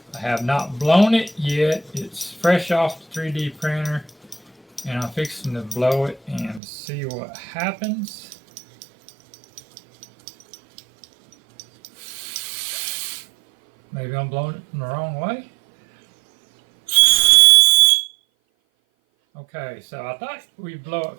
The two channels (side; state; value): left; drops out; at 6.6 s